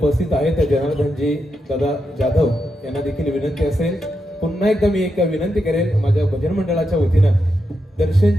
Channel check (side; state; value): both; normal; correlation 0.85